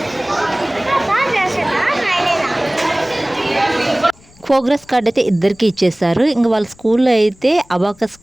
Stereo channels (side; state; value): left; noise; rumble, 28 dB below the sound